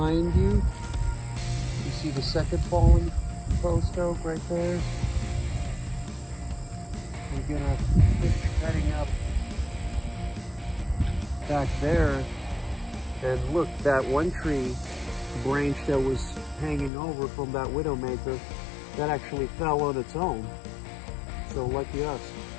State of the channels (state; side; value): drops out; right; at 16.9 s